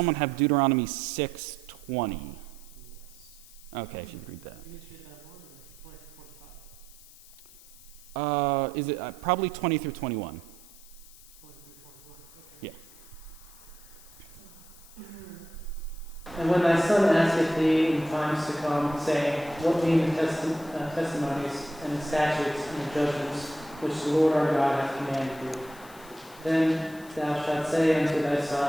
have Deuteronomy 6:20? Okay, if you could read that. Is it probably 20 through 21? 20 through 21. Okay. Yeah. And when thy son asketh thee in times to come, saying, What mean the testimonies and the statutes and the judgments which the Lord our God hath commanded thee? Then thou shalt say unto thy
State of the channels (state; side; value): noise; left; hiss, 21 dB below the sound